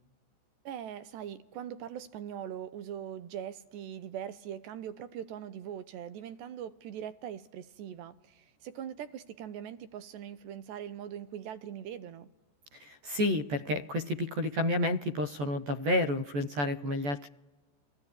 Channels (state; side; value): late; left; 14 ms